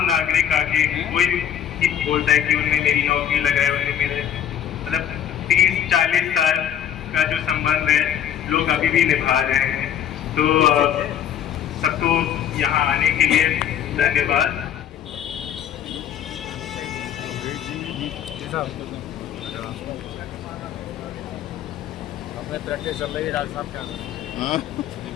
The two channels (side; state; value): right; quieter; 9.7 dB